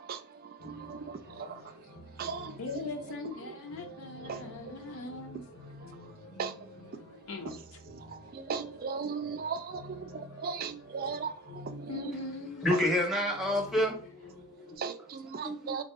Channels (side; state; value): both; normal; correlation 0.32